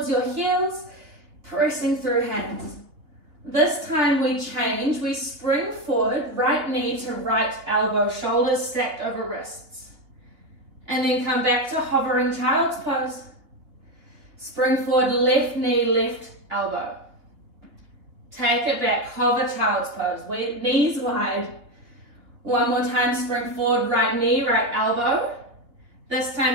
your heels, pressing through hands. This time we change, we spring forward, right knee to right elbow, shoulders stacked over wrists. And then come back to hovering child's pose. Spring forward, left knee, left elbow. Take it back, hover child's pose, knees wide. One more time, spring forward, right knee, right elbow. This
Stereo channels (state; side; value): late; left; 3.4 ms